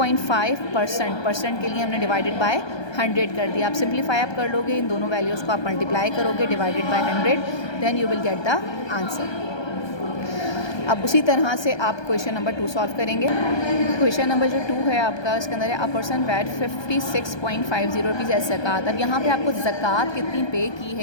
परसेंट के लिए हमने डिवाइडेड बाय 100 कर दिया। आप सिंप्लीफाई आप कर लोगे, इन दोनों वैल्यूज़ को आप मल्टीप्लाई करोगे divided by 100, then you will get the answer. अब उसी तरह से आप क्वेश्चन नंबर 2 सॉल्व करेंगे। क्वेश्चन नंबर जो 2 है आपका, इसके अंदर है a person paid 56.50 rupees as zakat. अब यहाँ पे आपको ज़कात कितनी पे की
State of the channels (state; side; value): late; right; 1.2 ms